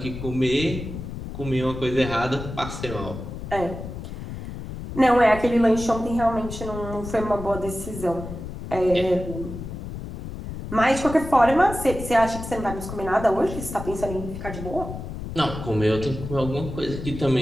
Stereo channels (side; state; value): left; noise; rumble, 9 dB below the sound